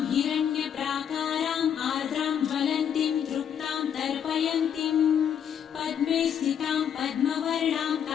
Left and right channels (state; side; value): quieter; right; 8.6 dB